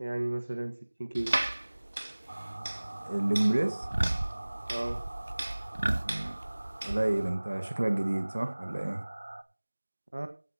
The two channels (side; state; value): both; inverted; correlation -1.00